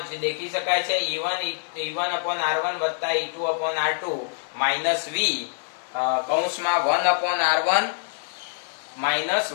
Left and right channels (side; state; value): right; silent; digital silence